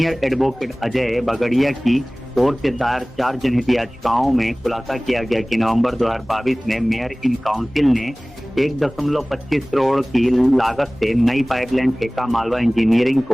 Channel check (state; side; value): noise; left; hum, 26 dB below the sound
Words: एडवोकेट अजय बगड़िया की ओर से दायर 4 जनहित याचिकाओं में खुलासा किया गया कि नवंबर 2022 में मेयर इन काउंसिल ने 1.25 करोड़ की लागत से नई पाइपलाइन ठेका मालवा इंजीनियरिंग